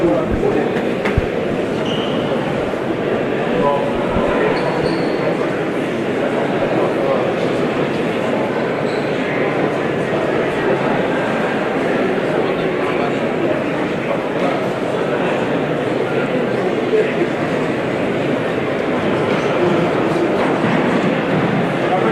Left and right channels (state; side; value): identical; both; correlation 1.00